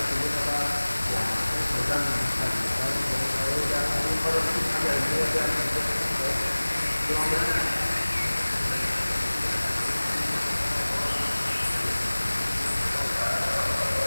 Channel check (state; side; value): inverted; both; correlation -1.00